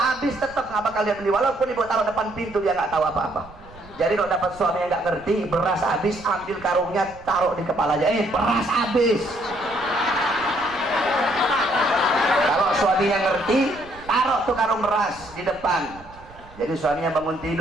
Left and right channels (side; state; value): right; noise; rumble, 22 dB below the sound